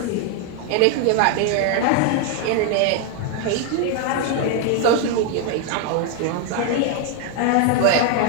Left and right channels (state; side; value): different; both; correlation 0.01